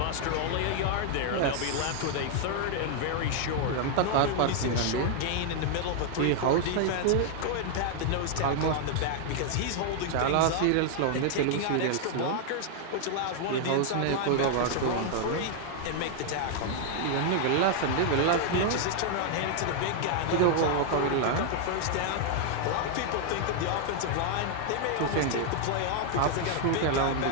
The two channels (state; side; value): different; both; correlation 0.00